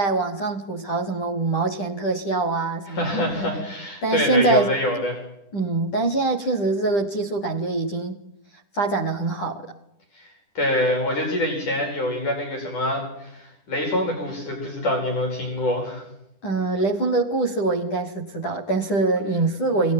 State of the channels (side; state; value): right; late; 10 ms